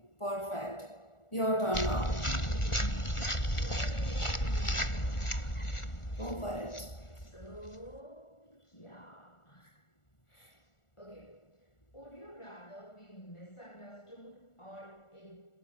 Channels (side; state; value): right; late; 1.4 ms